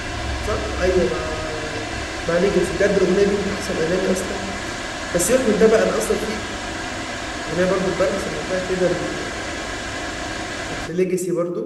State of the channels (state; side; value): identical; both; correlation 1.00